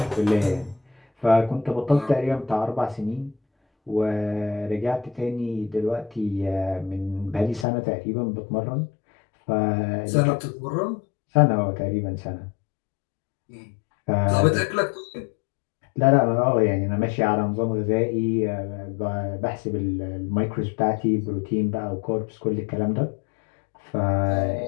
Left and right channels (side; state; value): right; drops out; at 7.7 s